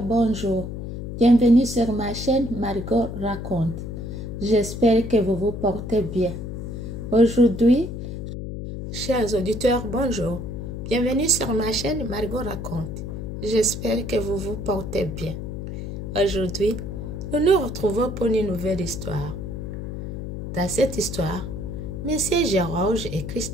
bonjour. Bienvenue sur ma chaîne Margot Raconte. J'espère que vous vous portez bien. Aujourd'hui, chers auditeurs, bonjour. Bienvenue sur ma chaîne Margot Raconte. J'espère que vous vous portez bien. Aujourd'hui, nous nous retrouvons pour une nouvelle histoire. Dans cette histoire, Messieurs Georges et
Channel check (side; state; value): left; noise; hum, 7 dB below the sound